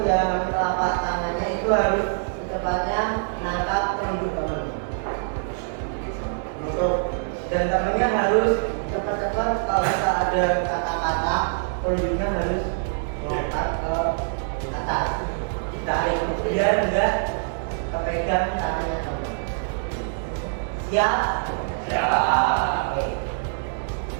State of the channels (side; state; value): left; silent; digital silence